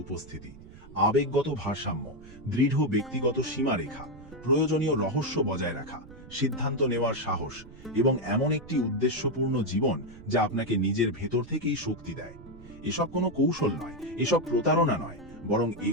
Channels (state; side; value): noise; right; rumble, 19 dB below the sound